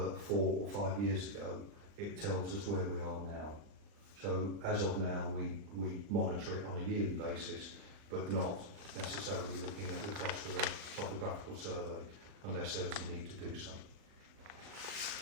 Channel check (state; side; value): late; left; 39 ms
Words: 4 or 5 years ago. It tells us where we are now. So as of now, we monitor it on a yearly basis, but not necessarily looking at the cost of a topographical survey unless there's a need to do so.